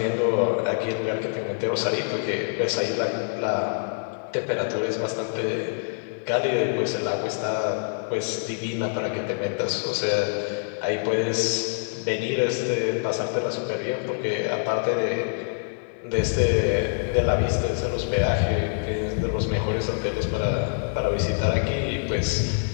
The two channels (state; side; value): silent; right; digital silence